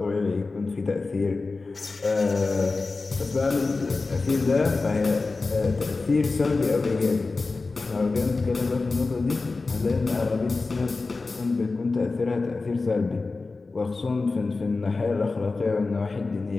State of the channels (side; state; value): right; quieter; 3.8 dB